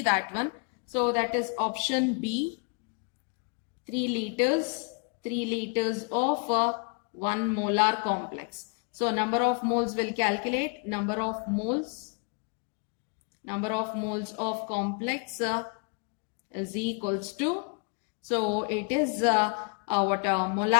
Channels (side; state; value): right; quieter; 38.6 dB